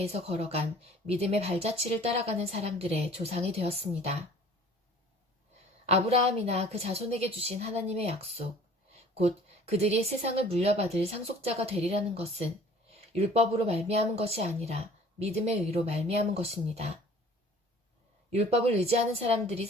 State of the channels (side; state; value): both; normal; correlation 0.50